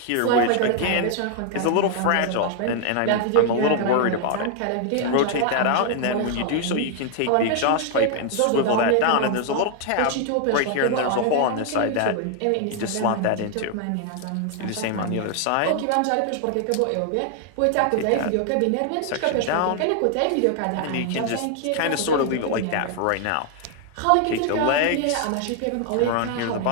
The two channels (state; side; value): different; both; correlation 0.00